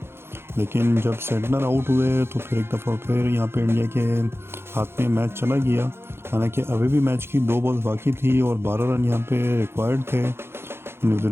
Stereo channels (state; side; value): late; left; 0.12 ms